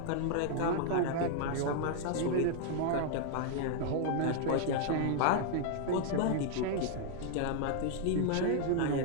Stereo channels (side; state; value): both; different; correlation 0.00